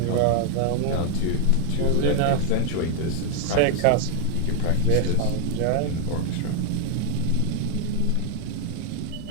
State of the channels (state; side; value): different; both; correlation 0.00